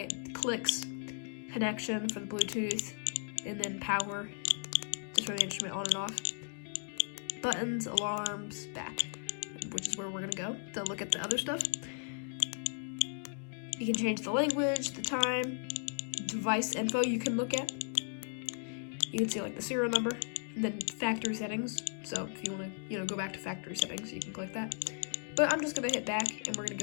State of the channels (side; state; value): right; silent; 54 dB below the other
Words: clicks, connection for the Bluetooth, and then power, just for the instrument on and off, buttons, alarms, back, which is where we're gonna go to look at the other stuff. You can change the language, the time, device info you can look at. You can see like the serial number, and then factory settings. So if you want to, you know, go back to factory settings, you can click that. But I'm just gonna hit back, and we're gonna